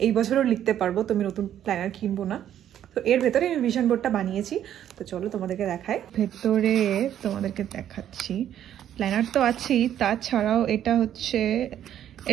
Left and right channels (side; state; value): left; quieter; 10.7 dB